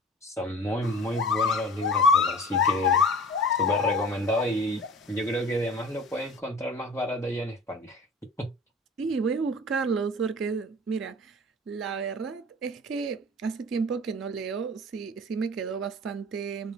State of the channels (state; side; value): normal; both; correlation 0.41